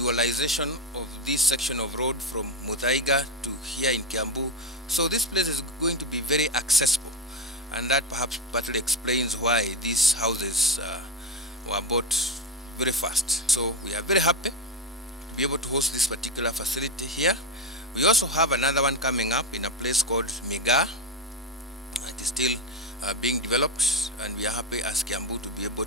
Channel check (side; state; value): both; normal; correlation 0.12